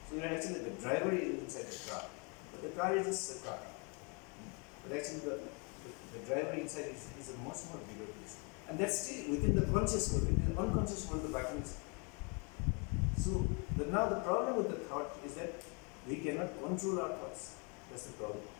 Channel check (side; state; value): right; quieter; 33.6 dB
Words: So you're actually the driver is inside the car, but the car is just a car. But actually the driver inside is a much more bigger place. And that's still within the conscious world. In the unconscious world, the vacuum is. So now the problem with the thought is that we cannot control our thoughts. That's the problem.